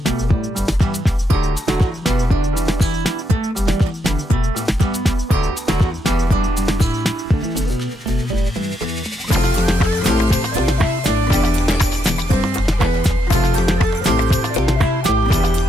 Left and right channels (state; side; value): normal; both; correlation 0.80